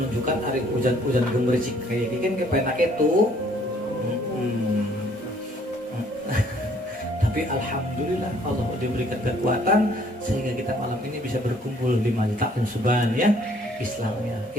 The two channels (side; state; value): both; normal; correlation 0.61